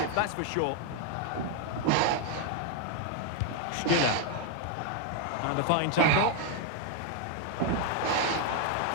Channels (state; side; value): different; both; correlation 0.01